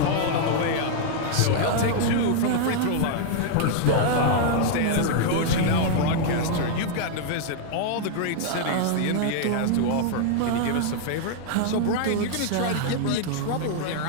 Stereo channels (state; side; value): different; both; correlation 0.00